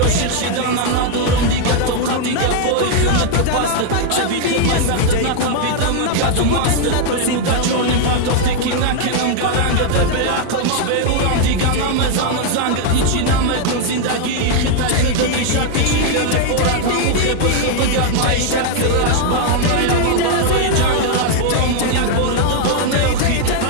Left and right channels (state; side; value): different; both; correlation 0.00